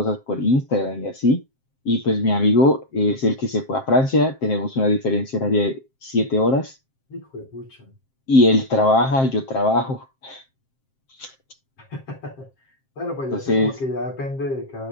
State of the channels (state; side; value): late; right; 7.6 ms